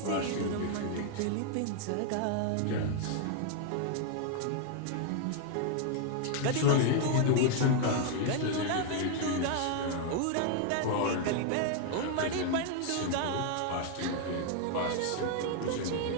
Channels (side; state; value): both; different; correlation 0.00